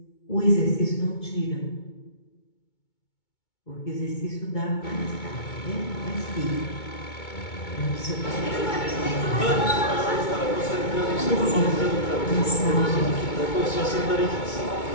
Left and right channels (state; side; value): late; right; 2.2 ms